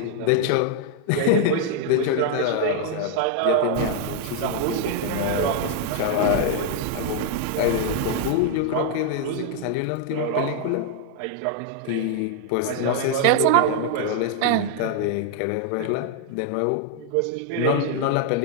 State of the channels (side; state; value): both; different; correlation 0.00